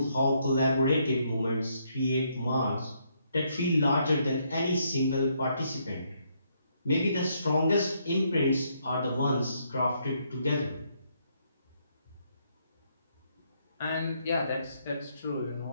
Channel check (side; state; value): both; inverted; correlation -0.73